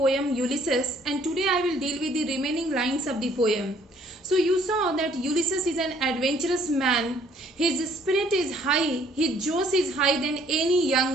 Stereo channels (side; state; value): both; normal; correlation 0.61